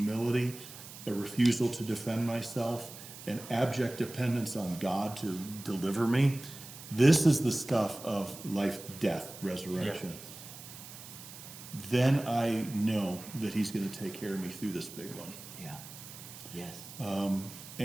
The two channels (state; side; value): noise; right; hiss, 14 dB below the sound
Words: a refusal to defend myself, an abject dependence on God to deliver me. This is the stuff of life, death, resurrection. Yeah. Then I know that he's going to take care of me through this big one. Yeah. Yes.